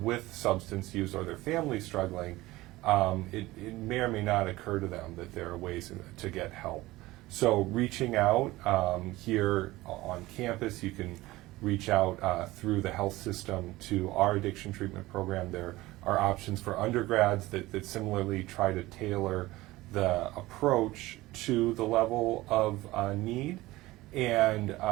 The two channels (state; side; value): quieter; left; 18.6 dB